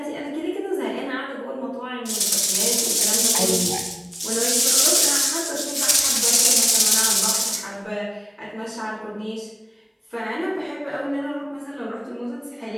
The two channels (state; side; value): identical; both; correlation 1.00